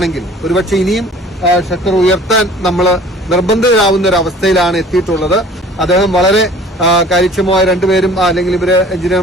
ഒരുപക്ഷെ ഇനിയും ഷട്ടർ ഉയർത്താൻ നമ്മൾ നിർബന്ധിതരാകുന്ന ഒരു അവസ്ഥയിലാണ് എത്തിയിട്ടുള്ളത്. അദ്ദേഹം വളരെ കാര്യക്ഷമമായ രണ്ടുപേരും അല്ലെങ്കിൽ ഇവര്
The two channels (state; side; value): normal; both; correlation 0.49